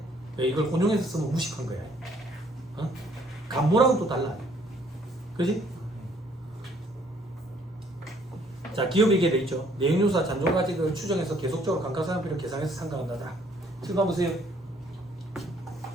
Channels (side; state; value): both; normal; correlation 0.63